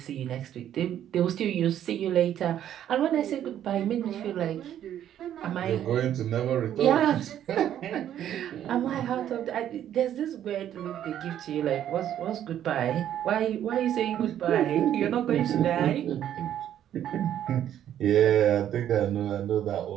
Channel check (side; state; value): left; quieter; 10.8 dB